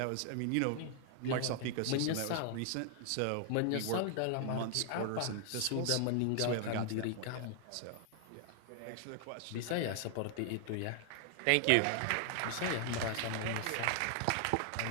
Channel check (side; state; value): both; different; correlation 0.00